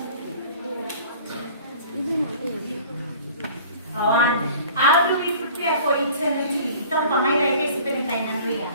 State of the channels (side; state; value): both; inverted; correlation -0.47